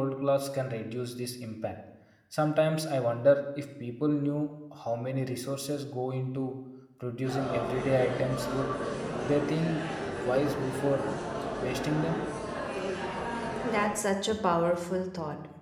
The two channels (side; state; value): both; identical; correlation 1.00